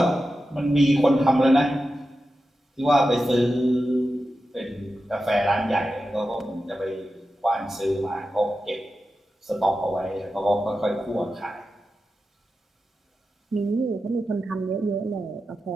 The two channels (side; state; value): both; normal; correlation 0.91